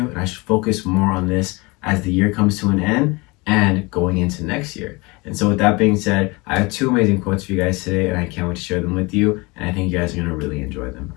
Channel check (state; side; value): quieter; right; 25.3 dB